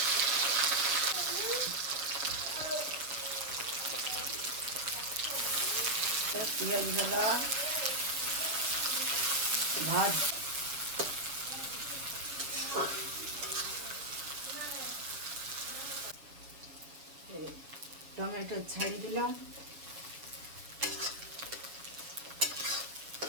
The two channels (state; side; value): late; left; 7.1 ms